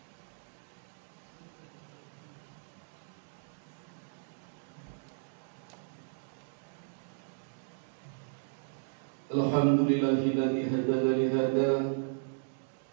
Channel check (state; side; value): silent; left; digital silence